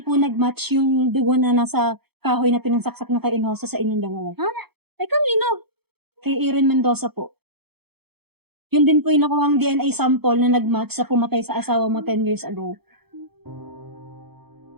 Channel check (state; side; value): late; left; 0.97 ms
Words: po nag-match yung dugo na nasa kahoy na pinansaksak na kay Inosa sa inyong dalawa. Ha? Ay, kanino? Kay Erin Mendoza po. Yun din po yung nakuhang DNA sample na nag-match sa pumatay sa asawa mo 10 years ago.